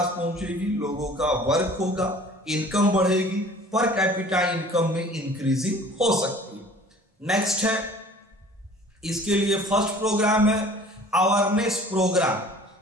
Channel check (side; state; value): both; normal; correlation 0.48